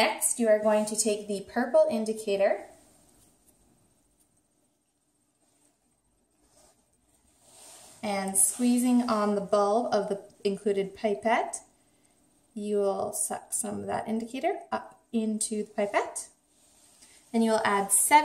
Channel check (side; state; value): both; identical; correlation 1.00